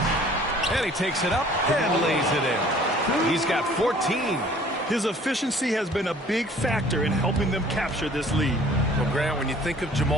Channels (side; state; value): both; normal; correlation 0.53